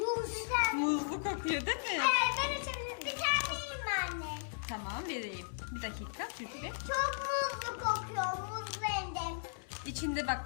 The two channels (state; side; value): silent; right; 54 dB below the other